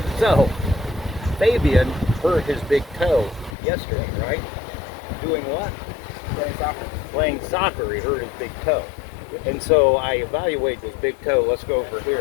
So, Fabian hurt his big toe yesterday, right? Doing what? Playing soccer. Playing soccer, he hurt his big toe. And so I evaluate his big toe. Let's go over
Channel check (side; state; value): right; drops out; at 3.6 s